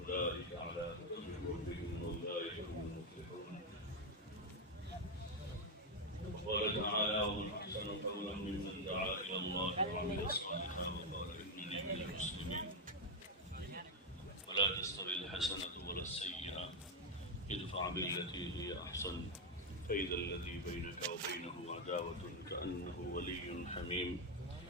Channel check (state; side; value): normal; both; correlation 0.04